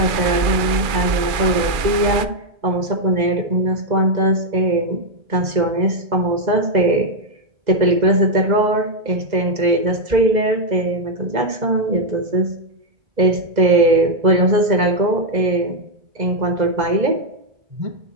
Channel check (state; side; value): late; left; 2.3 ms